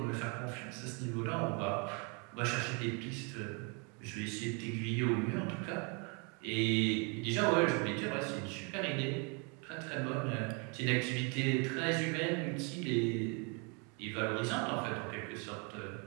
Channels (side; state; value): left; quieter; 34.0 dB